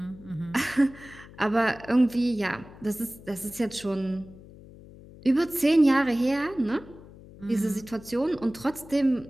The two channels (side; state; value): left; noise; hum, 20 dB below the sound